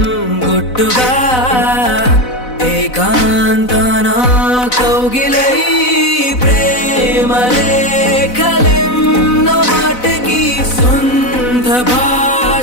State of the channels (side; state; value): right; late; 4.0 ms